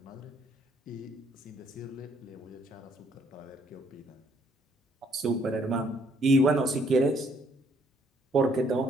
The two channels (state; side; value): normal; both; correlation 0.67